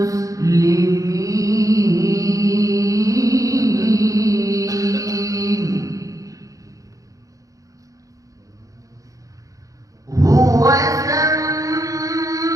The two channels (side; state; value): left; late; 0.16 ms